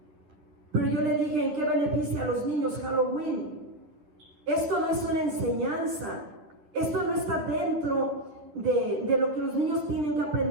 Pero yo le dije, ¿en qué beneficia a los niños Halloween? Esto no es una enseñanza, esto no está dentro de lo que los niños tienen que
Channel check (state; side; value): late; left; 11 ms